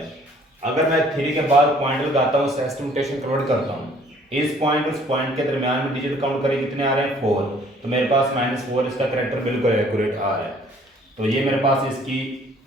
अगर मैं 3 के बाद पॉइंट लगाता हूँ, एस्टिमेशन कन्वर्ट करता हूँ, इस पॉइंट उस पॉइंट के दरमियान में डिजिट काउंट करें कितने आ रहे हैं? 4। तो मेरे पास -4 इसका करैक्टर बिल्कुल एक्यूरेट आ रहा है। तो ये मेरे पास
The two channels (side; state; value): both; normal; correlation 0.58